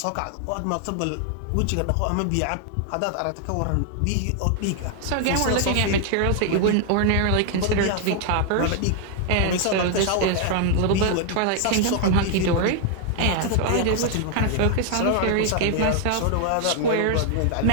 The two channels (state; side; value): different; both; correlation 0.00